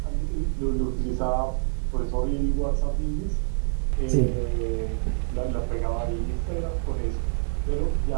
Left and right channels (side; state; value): left; silent; 61 dB below the other